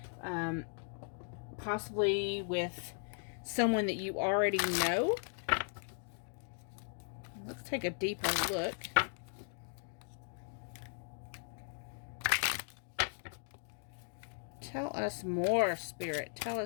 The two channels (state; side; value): silent; right; digital silence